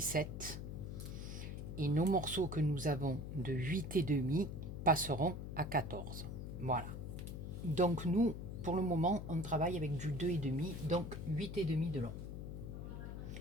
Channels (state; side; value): noise; left; hum, 7 dB below the sound